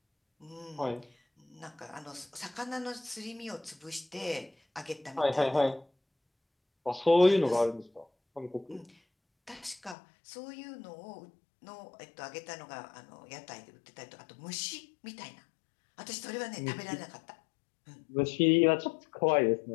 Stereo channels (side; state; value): right; drops out; at 10.0 s